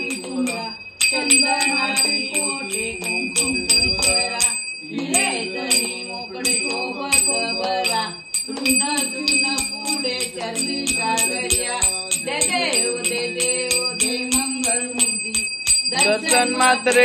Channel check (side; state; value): both; identical; correlation 1.00